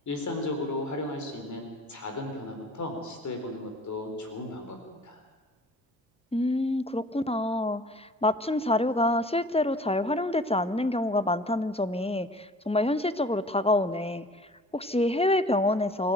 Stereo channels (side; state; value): both; normal; correlation 0.48